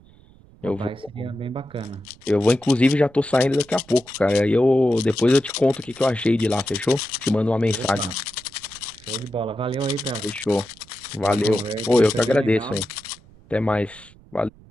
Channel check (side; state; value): right; noise; rumble, 25 dB below the sound